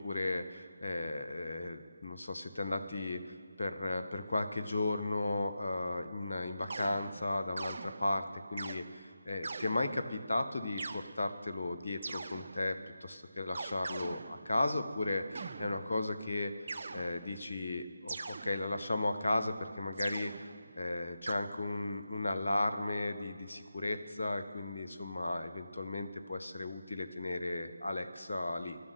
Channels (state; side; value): inverted; both; correlation -0.90